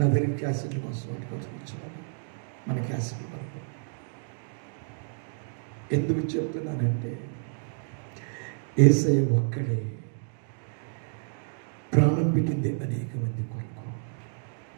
దగ్గర క్యాసెట్ల కోసం వాటి కోసం వచ్చేవాడు, మన క్యాసెట్ల వరకు. ఎందుకు చెప్తున్నానంటే, యేసయ్య ఒక్కడే ప్రాణం పెట్టింది అనేక మంది కొరకు.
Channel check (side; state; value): left; silent; digital silence